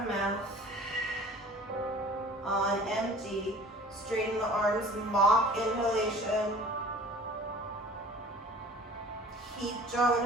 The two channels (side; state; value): both; normal; correlation 0.45